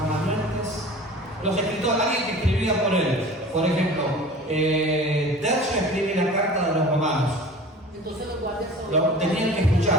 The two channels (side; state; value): both; normal; correlation 0.41